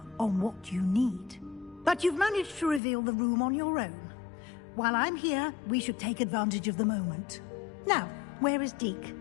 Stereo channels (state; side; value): drops out; right; at 2.8 s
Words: on what you need. But you've managed to reveal the room on your own. While I'm here, we should take advantage of the moment. Now, where is Deke?